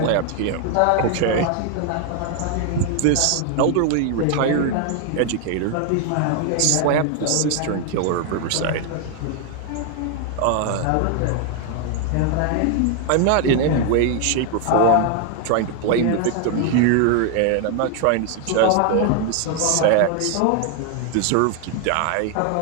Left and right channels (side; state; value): both; different; correlation 0.00